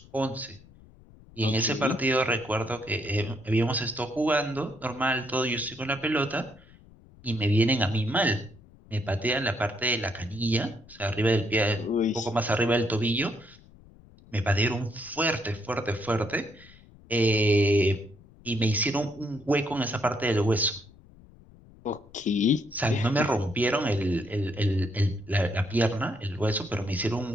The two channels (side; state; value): left; noise; rumble, 24 dB below the sound